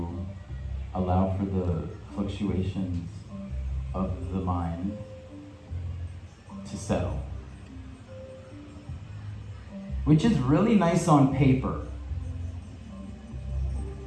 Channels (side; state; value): both; identical; correlation 1.00